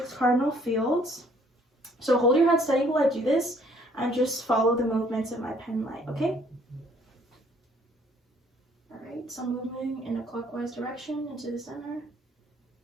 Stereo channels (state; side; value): normal; both; correlation 0.61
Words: cardinal fields. So hold your head steady while I do this, and just follow the movements of my pen light, okay? All right, so I'm moving in a clockwise direction into the center.